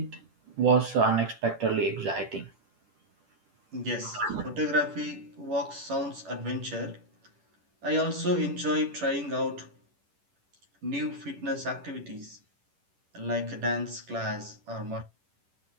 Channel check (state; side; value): late; left; 10 ms